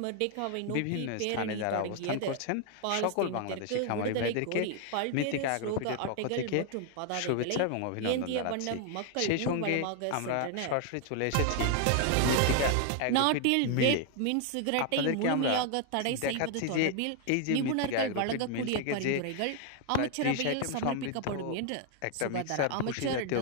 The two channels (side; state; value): both; different; correlation 0.00